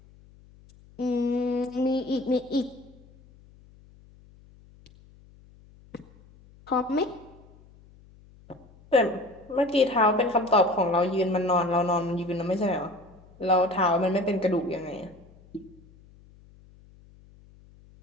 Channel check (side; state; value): left; noise; hum, 26 dB below the sound